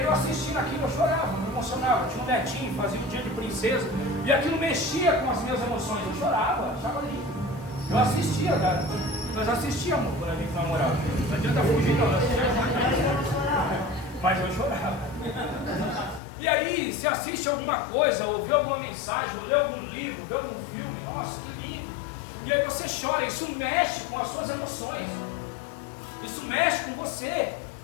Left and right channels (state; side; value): drops out; right; at 16.2 s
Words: eu assistindo aquilo, eu chorava, me emocionava. Eu tinha um netinho, fazia um dia de princesa, e aquilo mexia com as minhas emoções. Eu chorava, achava lindo. Eu assistia, cara. Nós assistíamos quando a gente namorava. Não adianta fugir, não. Mas eu chorava. E aí, se assiste alguma coisa, ou vê alguma mensagem, ou lê algum livro, vê algum filme, nossa, que lindo. E aí você chora, isso mexe com as suas emoções. Isso mexe com você.